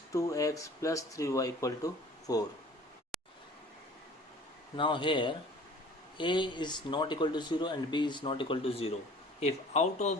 2x plus 3y equal to 4. Now here a is not equal to 0 and b is not equal to 0. If out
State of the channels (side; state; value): both; normal; correlation 0.49